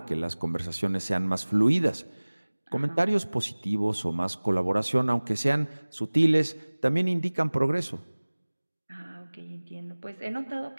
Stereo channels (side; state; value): both; inverted; correlation -1.00